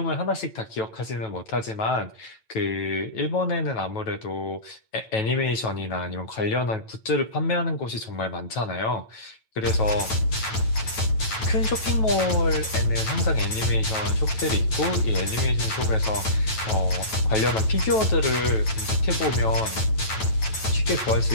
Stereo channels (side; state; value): right; late; 9.0 ms